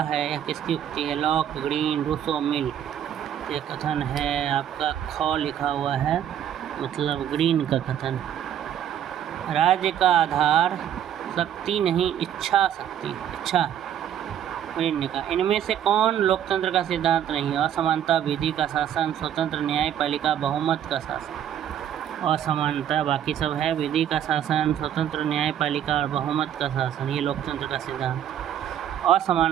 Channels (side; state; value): left; quieter; 10.0 dB